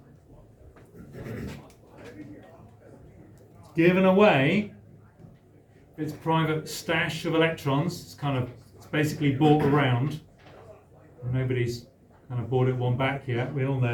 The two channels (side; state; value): both; identical; correlation 1.00